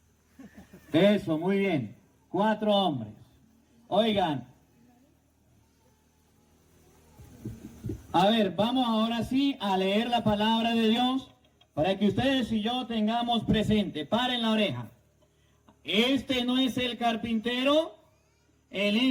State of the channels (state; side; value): identical; both; correlation 1.00